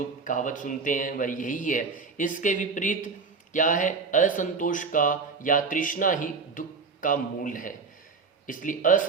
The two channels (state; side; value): quieter; left; 4.8 dB